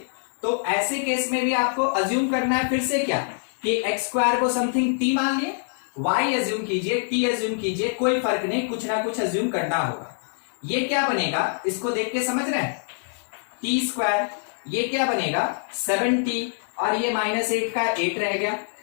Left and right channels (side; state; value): right; silent; digital silence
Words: तो ऐसे केस में भी आपको अज्यूम करना है फिर से क्या, कि एक्स स्क्वायर को समथिंग टी मान लिए, वाई अज्यूम कीजिए, टी अज्यूम कीजिए, कोई फर्क नहीं, कुछ ना कुछ अज्यूम करना होगा। ये क्या बनेगा, इसको देख के समझ रहे हैं, टी स्क्वायर, ये क्या बनेगा 7t, और ये -8 का 8 रह गया।